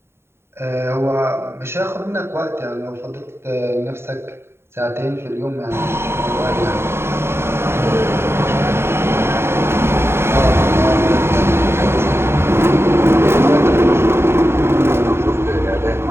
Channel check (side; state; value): left; late; 0.12 ms